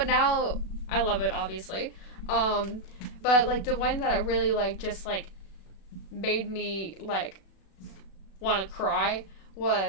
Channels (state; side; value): late; right; 36 ms